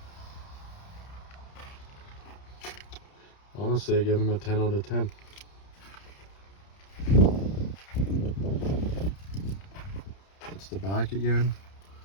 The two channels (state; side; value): late; right; 30 ms